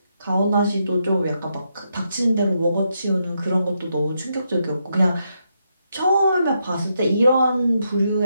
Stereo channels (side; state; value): both; inverted; correlation -0.81